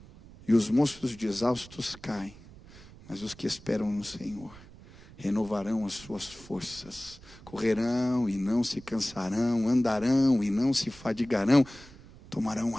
e os moços de exaustos caem, mas os que esperam no Senhor renovarão as suas forças, correrão e não se cansarão, andarão e não se fadigarão, tomarão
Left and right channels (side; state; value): right; noise; rumble, 20 dB below the sound